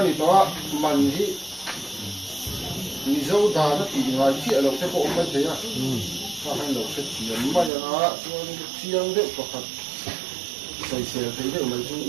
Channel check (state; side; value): drops out; left; at 7.7 s